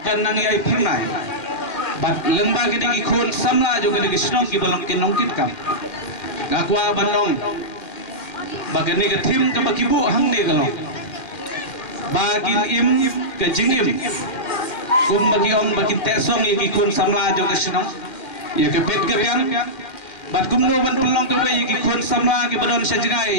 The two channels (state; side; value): late; right; 2.1 ms